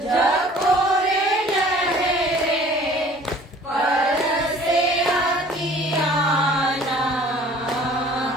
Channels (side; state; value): both; normal; correlation 0.50